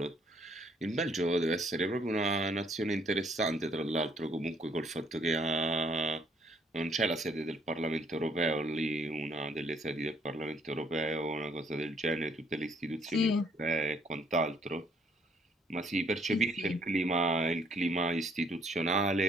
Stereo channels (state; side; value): normal; both; correlation 0.66